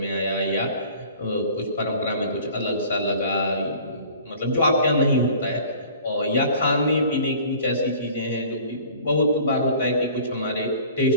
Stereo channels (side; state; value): both; inverted; correlation -0.48